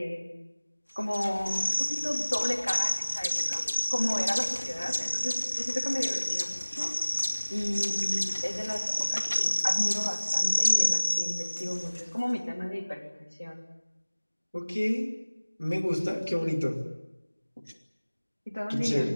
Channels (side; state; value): both; inverted; correlation -1.00